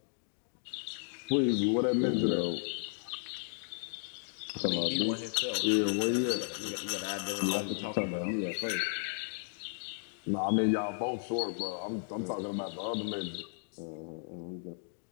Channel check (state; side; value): silent; right; 55 dB below the other